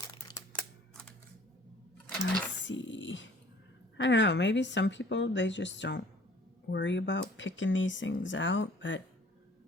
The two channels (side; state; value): both; normal; correlation 0.53